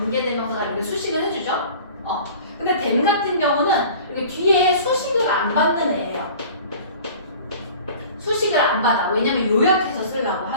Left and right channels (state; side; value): inverted; both; correlation -0.43